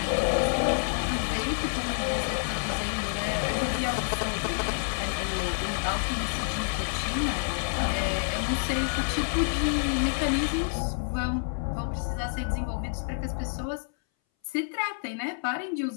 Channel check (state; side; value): silent; right; 59 dB below the other